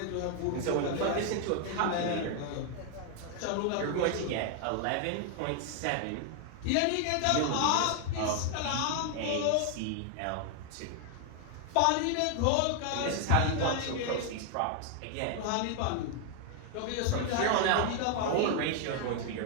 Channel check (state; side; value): different; both; correlation 0.00